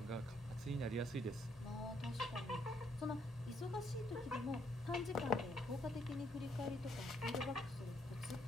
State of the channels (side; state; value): both; normal; correlation 0.71